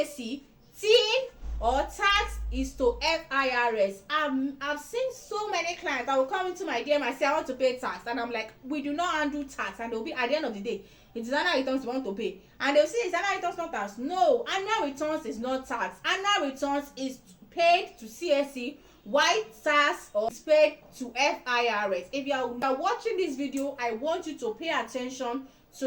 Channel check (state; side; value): identical; both; correlation 1.00